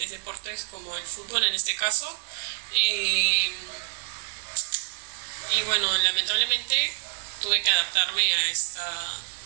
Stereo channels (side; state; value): left; silent; digital silence